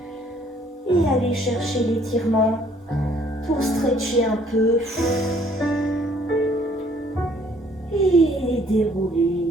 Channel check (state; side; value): normal; both; correlation 0.61